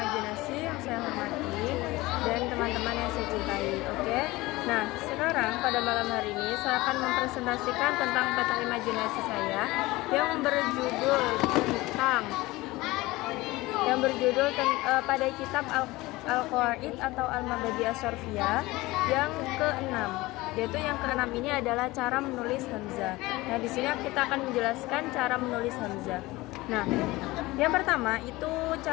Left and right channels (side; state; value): right; quieter; 20.1 dB